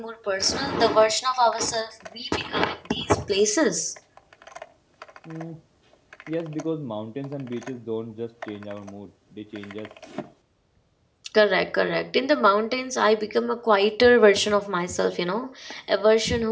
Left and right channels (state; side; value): identical; both; correlation 1.00